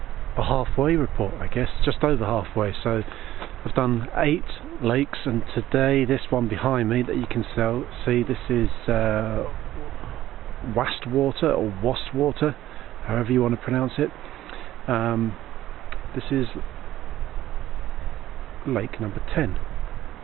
halfway report, I guess, just over halfway. So I've done 8 lakes, and today this one behind me that you can see, this is Wastwater or Wastwater, however you want to pronounce it. This is lake number 10.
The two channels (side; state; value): left; quieter; 13.8 dB